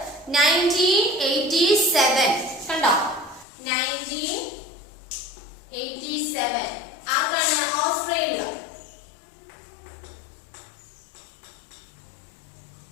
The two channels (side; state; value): right; drops out; at 3.5 s